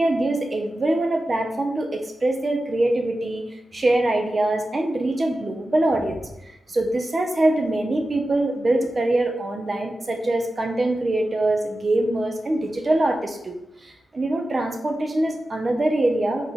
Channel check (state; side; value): normal; both; correlation 0.93